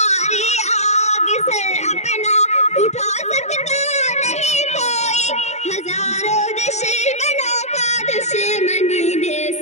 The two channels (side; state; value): right; late; 0.33 ms